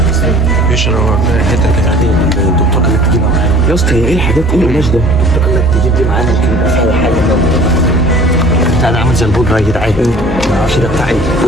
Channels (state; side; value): normal; both; correlation 0.49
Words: ايش الحته بتاعتي الدكتور قال لك تجيبها معانا يا اسطى؟ هي ايه الحاجات؟ ايه القماش ده؟ الدكتور قال لك تجيب دي معانا يمكن يبقى فيها حاجه. بتاع ده عامل زي البودره يا جدعان. ما اعرفش ده بتاع ايه.